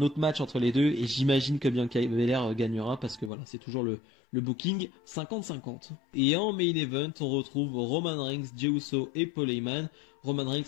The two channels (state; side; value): drops out; right; at 3.3 s